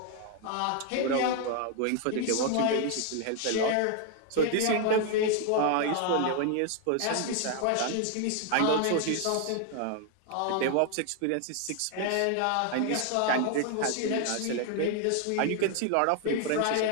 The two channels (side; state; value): both; different; correlation 0.00